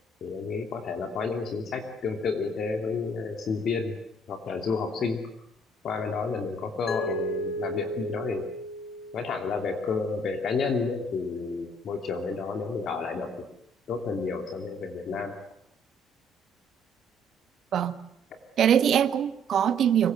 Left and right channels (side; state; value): both; normal; correlation 0.61